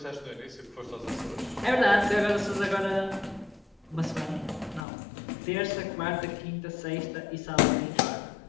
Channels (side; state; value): right; drops out; at 4.9 s